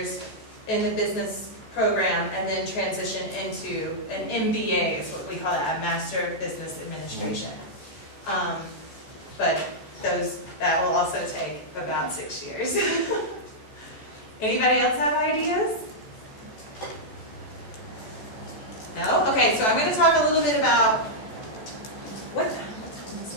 in the business program and then transition into an MBA, is what we call that, a Master of Business Administration. But that will also take about 6 years. Anybody else have ideas? No? Okay, so I'm going to talk a little bit about what time is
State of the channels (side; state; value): right; late; 14 ms